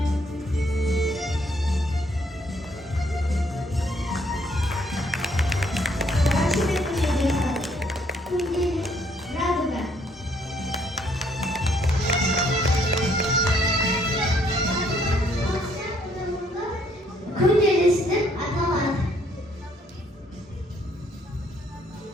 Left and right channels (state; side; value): normal; both; correlation 0.67